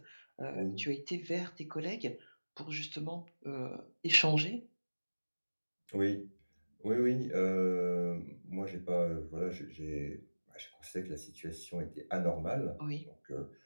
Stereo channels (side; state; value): both; inverted; correlation -1.00